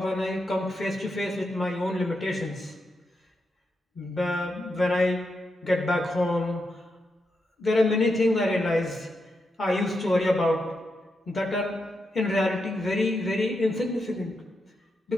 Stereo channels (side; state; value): both; normal; correlation 0.85